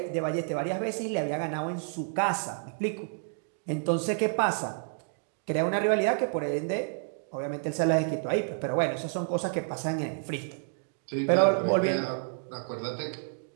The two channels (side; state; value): left; silent; digital silence